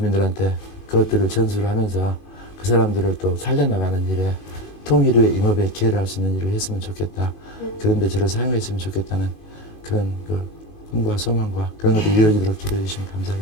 그것들을 전수를 하면서 그 사람들을 또 살려나가는 일에 통일 후에 임업에 기여를 할 수 있는 일을 했으면 좋겠다. 그런데 저를 사용했으면 좋겠다는 그런 그 꿈과 소망과 그런 것들이 이루어지도록 기도해 주시면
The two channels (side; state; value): right; late; 21 ms